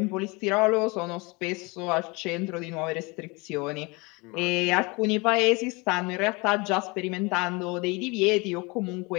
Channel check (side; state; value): right; quieter; 26.8 dB